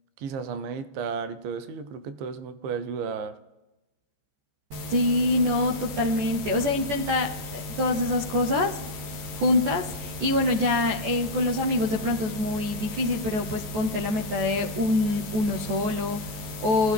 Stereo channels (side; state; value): left; late; 14 ms